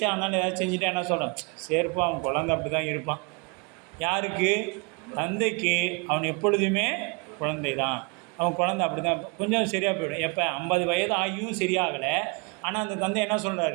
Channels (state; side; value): quieter; left; 31.3 dB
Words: ஆனாலும் ஏதாவது செஞ்சுட்டா என்ன சொல்கிறான்? சேர்ப்பா, அவன் குழந்தை அப்படி தான் இருப்பான். யாருக்கு? தந்தைக்கு. அவன் எப்பொழுதுமே குழந்தை தான். அவன் குழந்தை அப்படி தான் கொஞ்சம் சரியாக போயிடும். எப்போ? 50 வயது ஆகியும் சரியாகலை. ஆனால் அந்த தந்தை என்ன